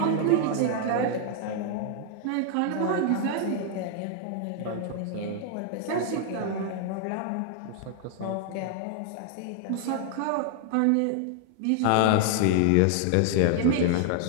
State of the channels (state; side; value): different; both; correlation 0.00